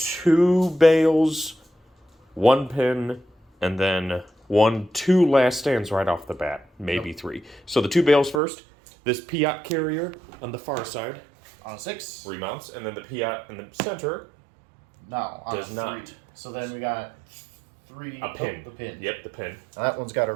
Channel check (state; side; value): drops out; left; at 8.4 s